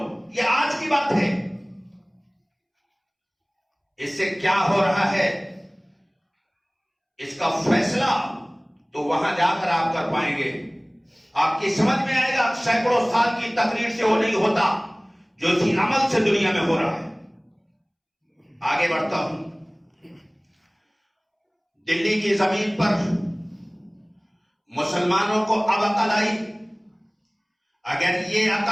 یہ آج کی بات ہے. اس سے کیا ہو رہا ہے اس کا فیصلہ تو وہاں جا کر آپ کر پائیں گے. آپ کی سمجھ میں آئے گا سینکڑوں سال کی تقریر سے وہ نہیں ہوتا جو اسی عمل سے دنیا میں ہو رہا ہے. آگے بڑھتا ہوں. دلی کی زمین پر مسلمانوں کو اب عقل آئی. اگر یہ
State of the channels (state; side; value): identical; both; correlation 1.00